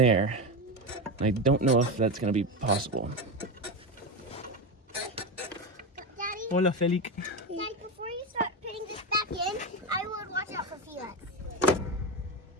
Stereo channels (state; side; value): normal; both; correlation 0.17